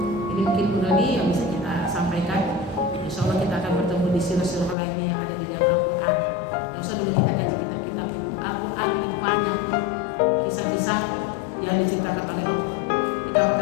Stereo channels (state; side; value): drops out; right; at 4.8 s